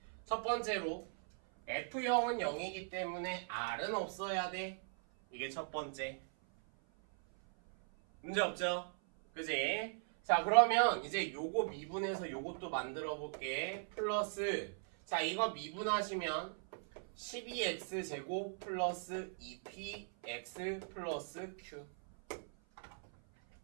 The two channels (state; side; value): silent; left; 52 dB below the other